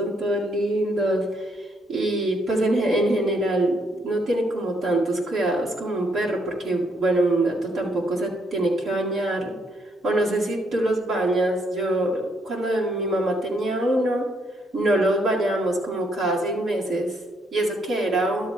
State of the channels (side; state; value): both; normal; correlation 0.72